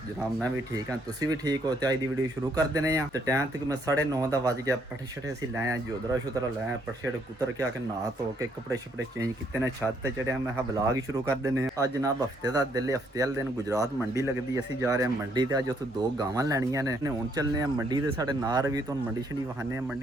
जनाब? मैं भी ठीक हाँ, तुसी भी ठीक हो? तो अज की वीडियो शुरू कर देने तो टाइम तक मैं 9:30 का वज गया। पट्ठे शट्ठे असीं लै आए, जोदरा शुदरा लै आए, पट्ठे शट्ठे कुतर के आके नहा धो के कपड़े शपड़े चेंज किते ने, छत ते चढ़िया। मैं ब्लॉग ही शुरू कर देने। अज जनाब हफ्ते का दिल, हफ्ते वाले दिन गुजरात मंडी लगती, असीं जा रहे हैं मंडी ते। अज उत्थों 2 गावां लैनियां ने। हुण चलने मंडी ते, साढ़े नार भी तो मंडी शंडी वहाने,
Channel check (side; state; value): both; normal; correlation 0.70